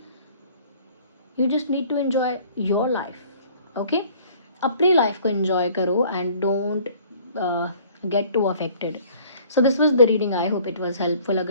You just need to enjoy your life. Okay अपनी लाइफ को एंजॉय करो and don't get to affected. So this was the reading, I hope it was helpful.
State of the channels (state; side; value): inverted; both; correlation -0.54